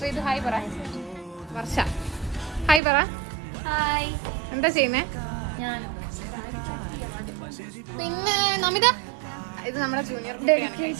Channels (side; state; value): left; drops out; at 2.8 s